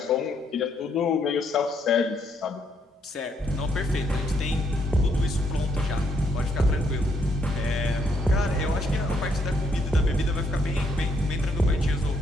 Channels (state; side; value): normal; both; correlation 0.73